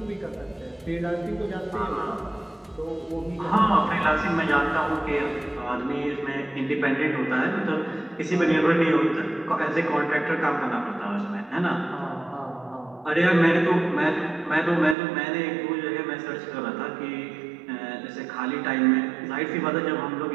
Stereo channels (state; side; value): drops out; left; at 15.0 s